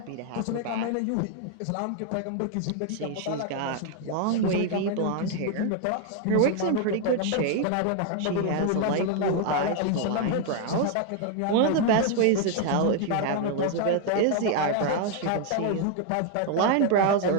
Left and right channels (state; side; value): different; both; correlation 0.00